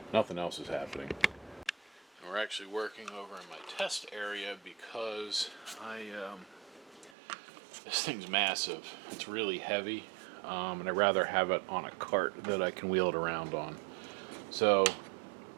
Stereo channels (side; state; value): left; drops out; at 7.1 s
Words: nothing else is happening. We're actually working over in my test area because this thing's massive. It's really heavy, and I'd rather have it on a cart that I can wheel it around on. So